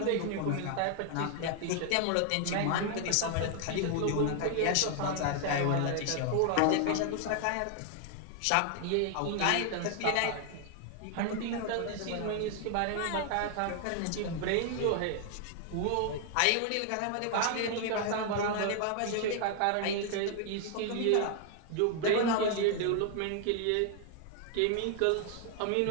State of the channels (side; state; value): both; different; correlation 0.00